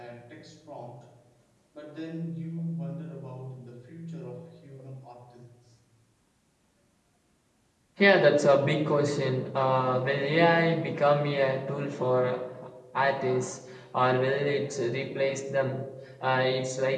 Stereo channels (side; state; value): both; identical; correlation 1.00